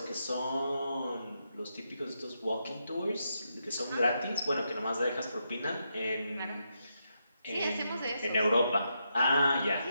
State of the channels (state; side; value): inverted; both; correlation -0.82